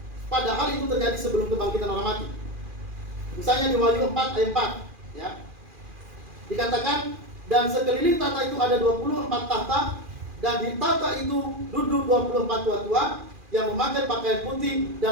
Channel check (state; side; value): late; left; 2.4 ms